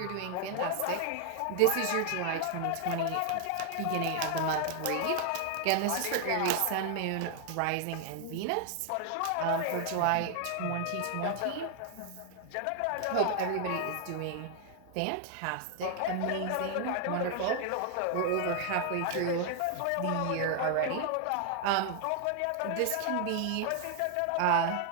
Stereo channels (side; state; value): both; different; correlation 0.00